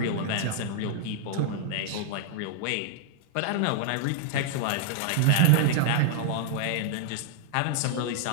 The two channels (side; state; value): both; different; correlation -0.01